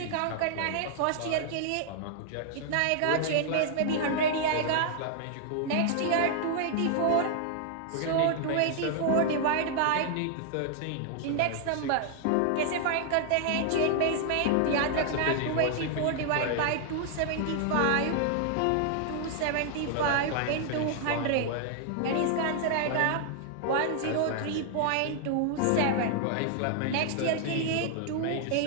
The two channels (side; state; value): both; different; correlation 0.00